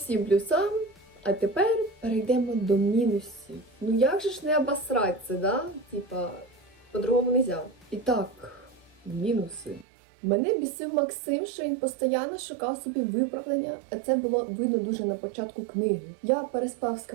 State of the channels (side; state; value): left; drops out; at 9.9 s